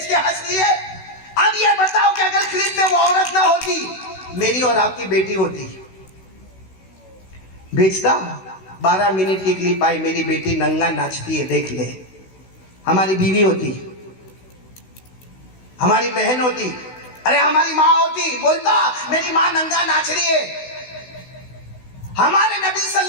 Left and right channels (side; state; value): right; late; 16 ms